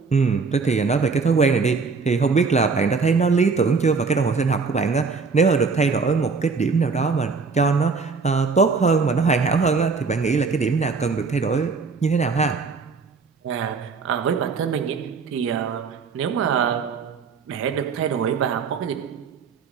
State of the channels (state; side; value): quieter; left; 4.8 dB